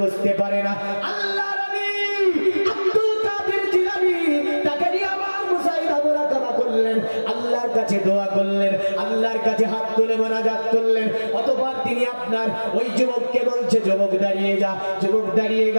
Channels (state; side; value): inverted; both; correlation -1.00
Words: বুঝতে পারে না। আল্লাহর ওলি আব্দুল কাদের জিলানী তাকে নিয়ে আবার মুশাহিদা মুরাকাবা করলেন, আল্লাহর কাছে দোয়া করলেন, আল্লাহর কাছে হাত তুলে মোনাজাত করলেন। অতঃপর তিনি আপনার ওই যুবককে বলছে যুবক দাঁড়িয়ে যা। যুবক দাঁড়িয়ে